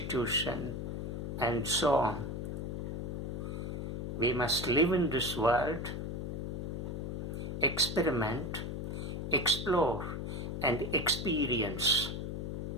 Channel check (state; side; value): noise; left; hum, 4 dB below the sound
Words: and so on. We must live in this world, experiment, explore, and experience.